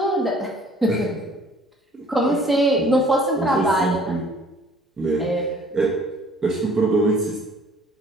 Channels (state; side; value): normal; both; correlation 0.55